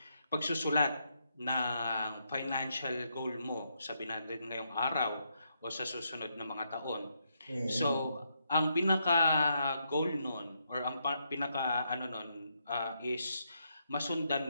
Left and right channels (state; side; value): inverted; both; correlation -0.78